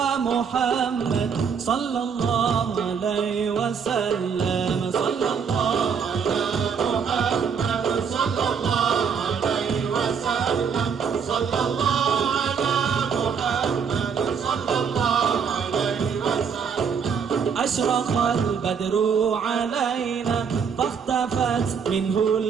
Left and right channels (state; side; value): quieter; left; 6.5 dB